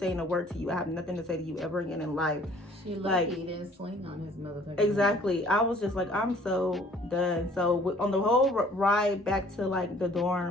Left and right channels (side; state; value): both; normal; correlation 0.56